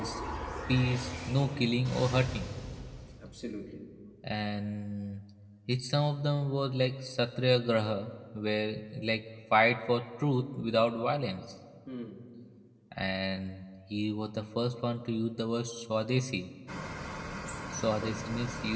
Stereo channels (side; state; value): both; identical; correlation 1.00